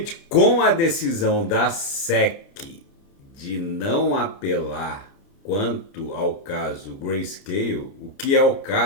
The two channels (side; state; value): right; late; 30 ms